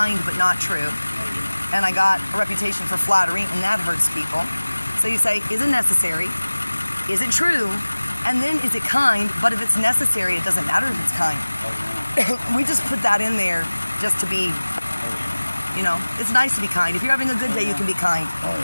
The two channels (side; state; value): both; inverted; correlation -1.00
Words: but not true, and I got a reputation for flattery, and that hurts people. So you say, is it necessary? Is it true? And then is it kind? But if it's necessary, it doesn't matter if it's kind. We just put that in there just to be, you know, it's nice to be kind. If you're having a good day, you can be kind.